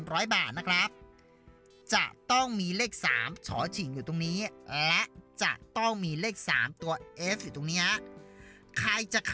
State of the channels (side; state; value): both; identical; correlation 1.00